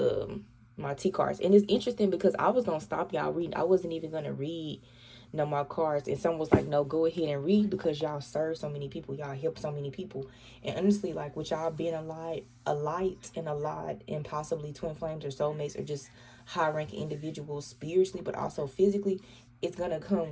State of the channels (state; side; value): identical; both; correlation 1.00